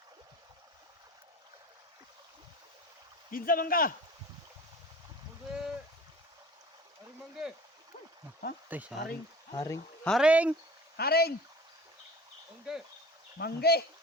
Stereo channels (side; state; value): both; normal; correlation 0.42